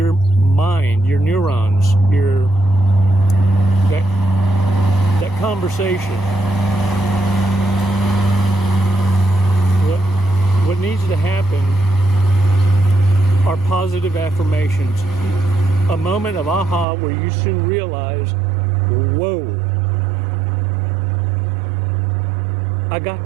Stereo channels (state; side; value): drops out; left; at 16.9 s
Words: mind, your neurons, that conversation, what needs to happen are positive affirmations. A moment of aha where you soon realize, whoa, I got